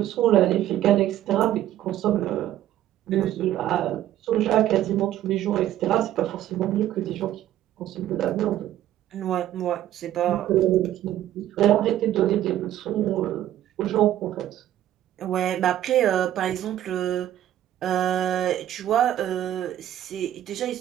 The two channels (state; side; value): quieter; left; 12.5 dB